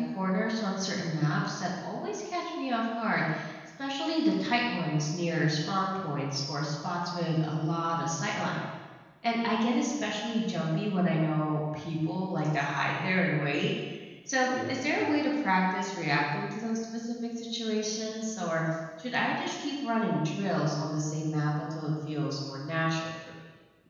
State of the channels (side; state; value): both; identical; correlation 1.00